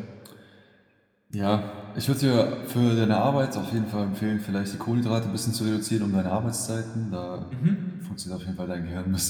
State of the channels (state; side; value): identical; both; correlation 1.00